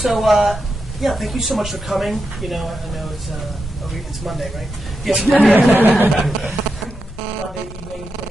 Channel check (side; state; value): both; normal; correlation 0.87